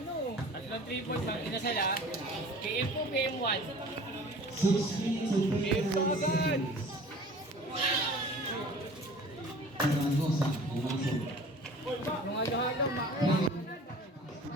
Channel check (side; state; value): both; normal; correlation 0.45